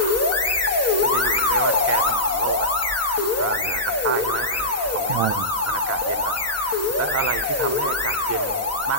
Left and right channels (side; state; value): both; normal; correlation -0.13